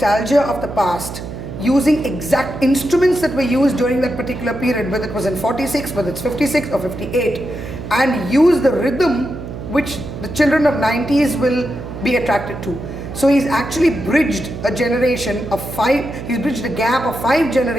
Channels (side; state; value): right; noise; hum, 9 dB below the sound